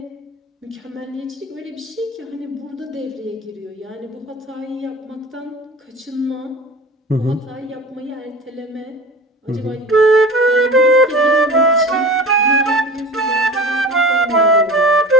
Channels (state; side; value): normal; both; correlation 0.36